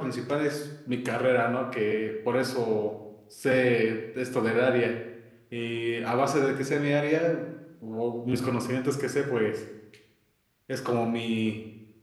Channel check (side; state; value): both; identical; correlation 1.00